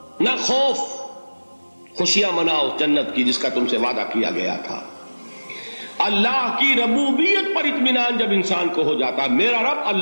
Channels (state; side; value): inverted; both; correlation -1.00